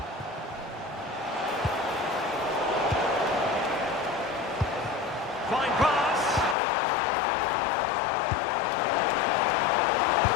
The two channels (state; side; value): drops out; right; at 6.6 s